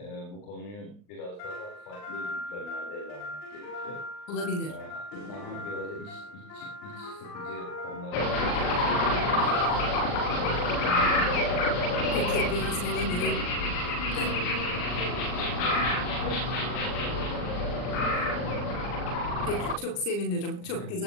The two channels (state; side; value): late; right; 39 ms